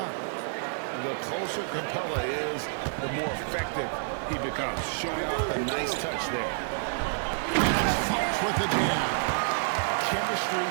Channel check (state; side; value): silent; left; 57 dB below the other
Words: The closer Capella is, the more effective he becomes. Showing off a nice touch there. Fox with the jam.